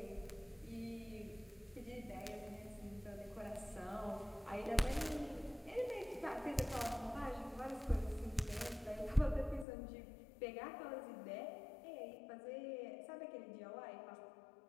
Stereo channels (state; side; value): drops out; right; at 9.7 s